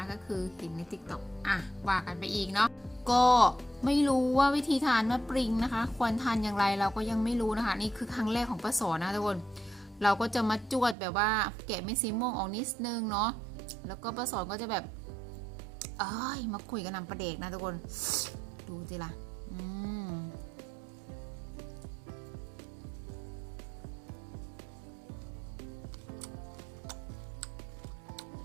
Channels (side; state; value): left; drops out; at 11.0 s